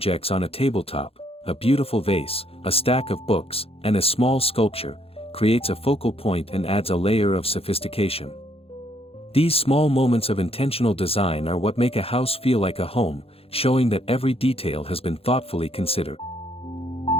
on a tabletop, a beautiful vase, a stack of books, and a small sculpture, creates a focal point and adds a layer of sophistication. These small moments of intentional design are what make a house feel like a home, showing that every detail has been thoughtfully considered.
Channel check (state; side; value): late; right; 0.28 ms